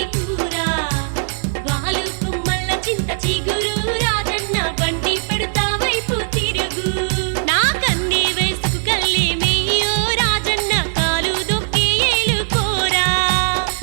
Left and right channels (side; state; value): left; silent; digital silence